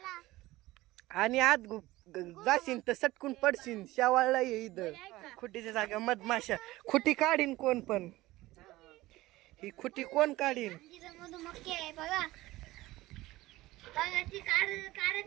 आणि आत जाशील तर सटकून पडशील. शेवाळला ये इथं खुटीच्या जागा मधमाशा. खुटी काढीन कोण पण. ही खुटी कोण काढीन. मधुमक्खी आहे बघा. बघा ती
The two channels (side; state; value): left; quieter; 18.1 dB